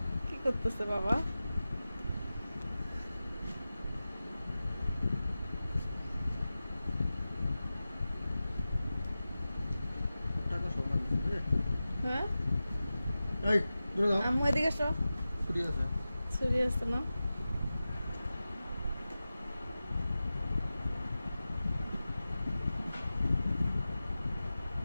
কি করতেছে বাবা? হ্যাঁ আম্মু এদিকে এসো। ছুরি আছে না?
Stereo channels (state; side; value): inverted; both; correlation -0.95